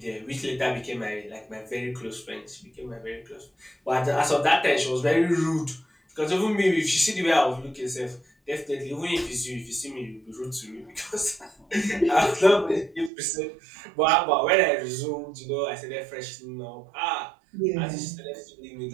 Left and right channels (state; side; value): drops out; left; at 13.1 s